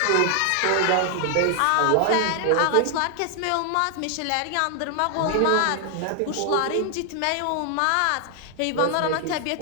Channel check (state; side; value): different; both; correlation 0.00